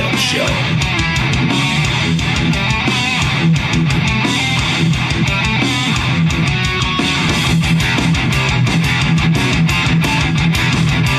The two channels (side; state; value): both; identical; correlation 1.00